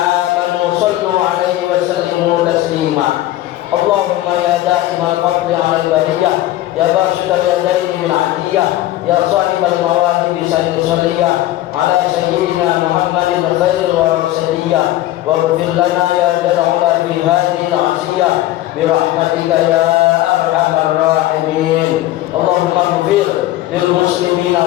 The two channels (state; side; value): quieter; right; 15.3 dB